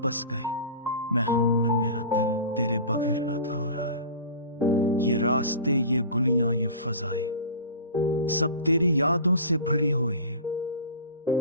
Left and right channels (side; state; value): both; inverted; correlation -0.36